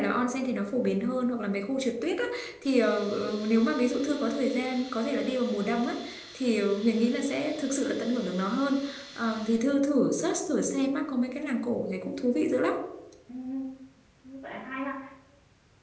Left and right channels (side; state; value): both; identical; correlation 1.00